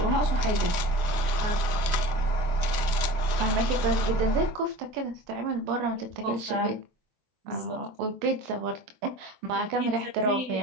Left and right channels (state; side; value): late; left; 24 ms